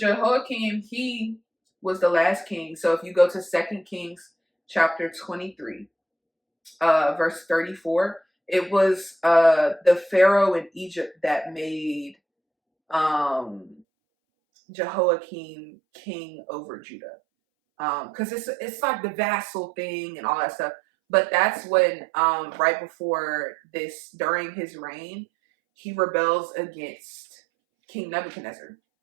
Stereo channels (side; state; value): left; drops out; at 13.8 s